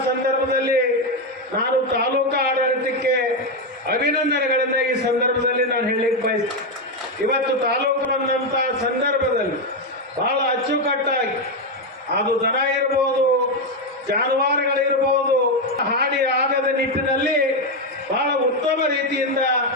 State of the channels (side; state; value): both; normal; correlation 0.06